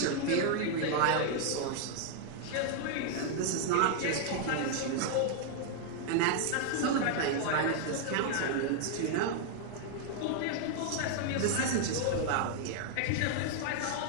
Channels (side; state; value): both; different; correlation 0.00